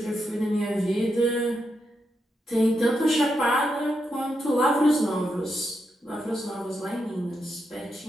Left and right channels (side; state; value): both; normal; correlation 0.84